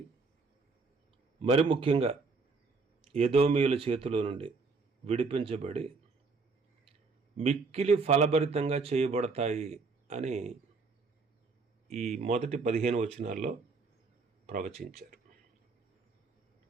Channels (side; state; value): left; quieter; 4.3 dB